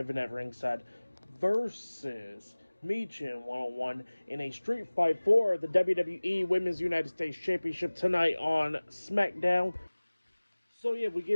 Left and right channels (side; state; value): both; inverted; correlation -1.00